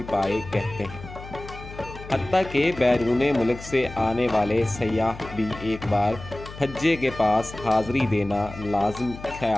پائے کہتے ہیں۔ حتیٰ کہ بیرون ملک سے آنے والے سیاح بھی ایک بار پھجے کے پاس حاضری دینا لازم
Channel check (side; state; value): left; noise; hum, 14 dB below the sound